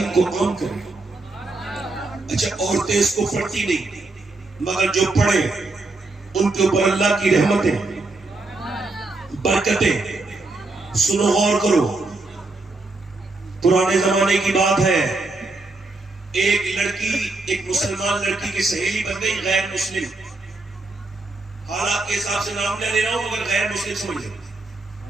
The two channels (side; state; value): left; quieter; 3.2 dB